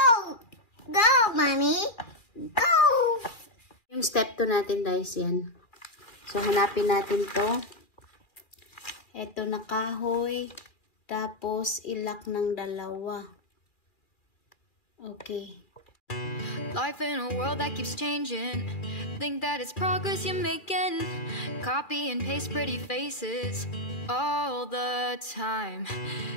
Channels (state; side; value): late; right; 2.4 ms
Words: Go, Mommy. Go! Yung step 2 natin guys, yan. So, hanapin natin to. Ito na kahoy. Tapos, ilak ng dalawa. Okay. Life in a world that keeps changing. Think that it's progress you're making. Copy and paste pretty faces all the time.